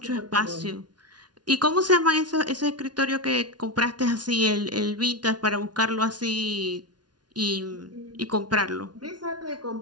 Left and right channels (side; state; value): left; late; 0.69 ms